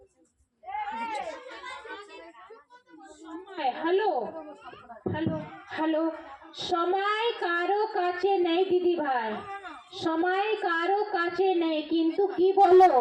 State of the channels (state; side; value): identical; both; correlation 1.00